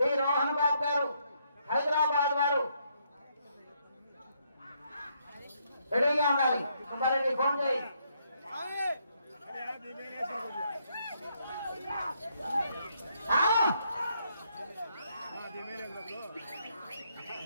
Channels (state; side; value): inverted; both; correlation -0.74